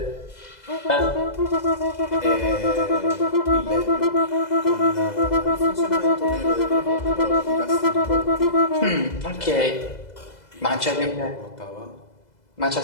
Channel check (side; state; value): right; late; 2.0 ms